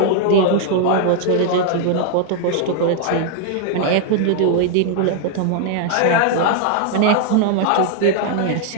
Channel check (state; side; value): different; both; correlation 0.00